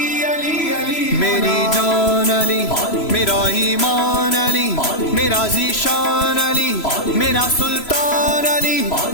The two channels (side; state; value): right; late; 3.0 ms